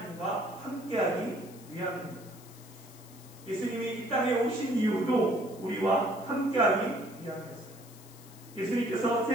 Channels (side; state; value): left; noise; hiss, 21 dB below the sound